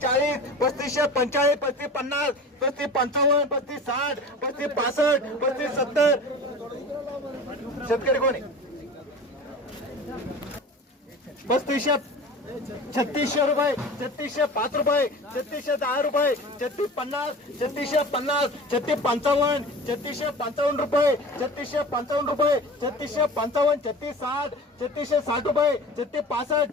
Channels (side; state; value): both; normal; correlation 0.36